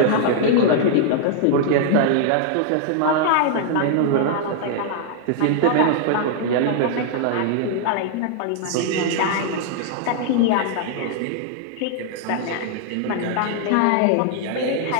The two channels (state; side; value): different; both; correlation -0.01